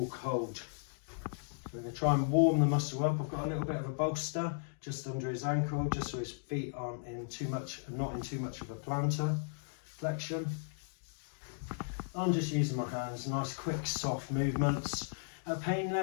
cold. We're going to try and warm the muscle up. I've got a little bit of a bolster just under his ankle, just so his feet aren't in too much, not in too much of a plantar flexion. I'm just using my hands, nice quick soft movements. At pain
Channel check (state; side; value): silent; right; digital silence